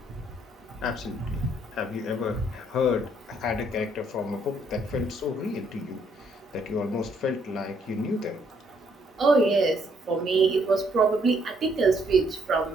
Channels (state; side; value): normal; both; correlation 0.69